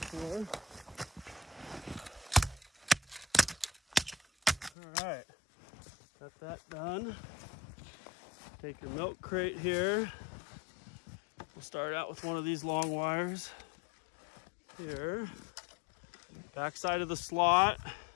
All right. Got that done. Take your milk crate here. We'll start out with one of these long wires here. Back side of the slot.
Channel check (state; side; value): drops out; right; at 4.7 s